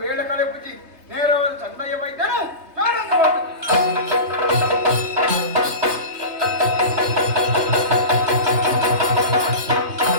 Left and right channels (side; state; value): left; late; 3.2 ms